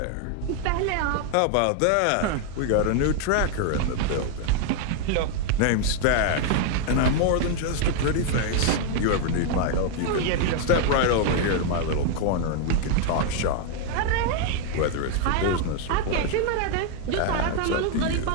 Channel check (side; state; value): both; different; correlation 0.00